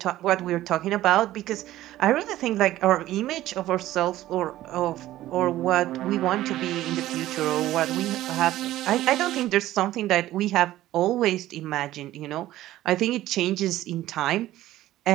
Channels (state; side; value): quieter; left; 14.7 dB